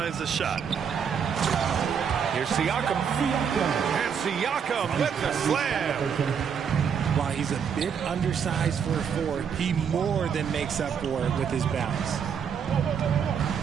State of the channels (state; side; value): quieter; left; 7.2 dB